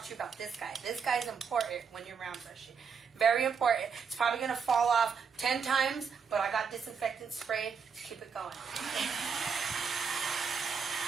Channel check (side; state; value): left; quieter; 6.1 dB